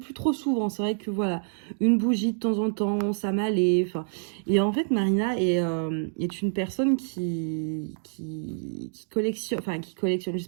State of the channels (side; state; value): left; silent; digital silence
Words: trop souvent. C'est vrai que voilà, une bougie de temps en temps, ça m'allait. Enfin, et en fait, Marina est une personne qui collectionne... Enfin, qui collectionne. Je sais